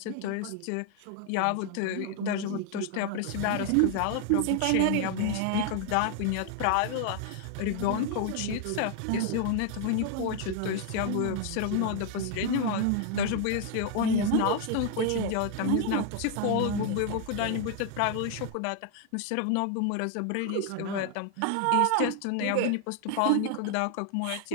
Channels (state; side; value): different; both; correlation 0.00